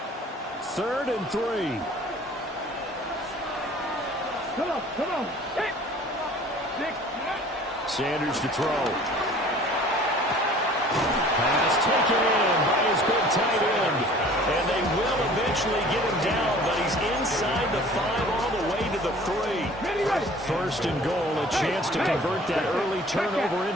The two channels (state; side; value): normal; both; correlation 0.48